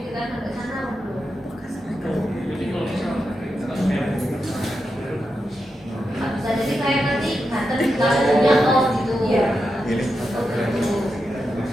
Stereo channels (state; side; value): normal; both; correlation 0.88